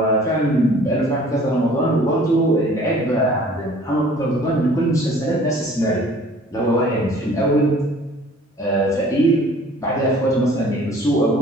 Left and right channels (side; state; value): both; normal; correlation 0.51